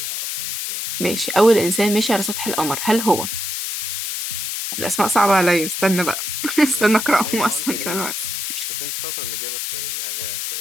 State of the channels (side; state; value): left; noise; hiss, 3 dB below the sound